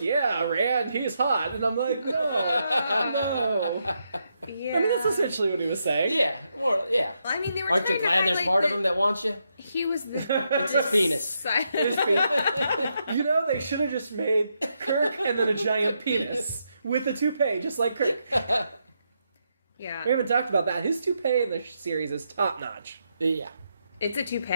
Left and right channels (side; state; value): both; inverted; correlation -0.81